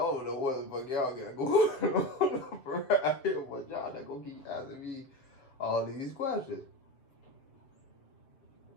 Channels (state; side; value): late; right; 7.5 ms